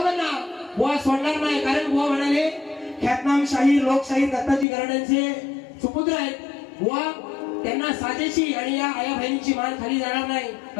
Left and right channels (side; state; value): right; drops out; at 4.7 s